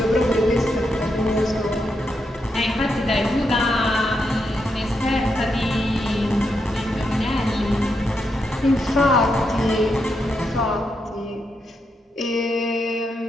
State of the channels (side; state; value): both; normal; correlation 0.82